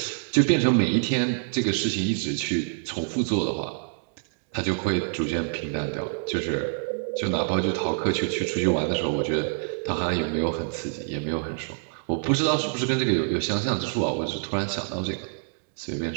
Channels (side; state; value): left; silent; digital silence